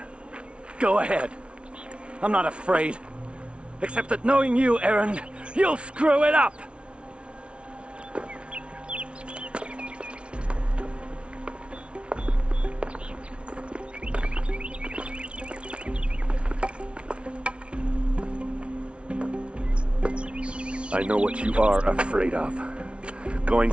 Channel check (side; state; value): left; late; 0.059 ms